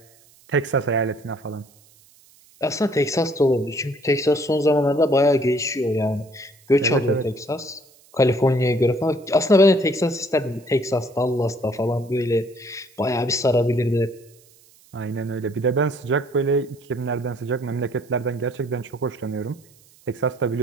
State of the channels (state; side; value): noise; right; hiss, 28 dB below the sound